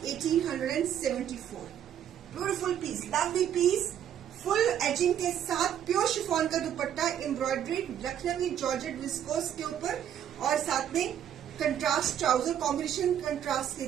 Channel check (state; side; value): quieter; left; 9.9 dB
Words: 1874. Beautiful piece, lovely piece, full edging के साथ प्योर शिफॉन का dupatta, embroidery, Lucknowi georgette viscose के ऊपर और साथ में कंट्रास्ट ट्राउजर. कॉम्बिनेशन कंट्रास्ट के